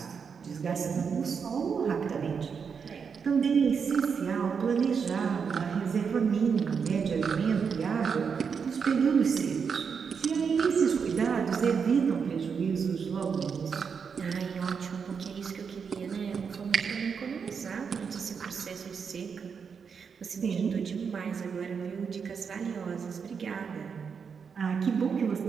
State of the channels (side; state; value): left; quieter; 6.2 dB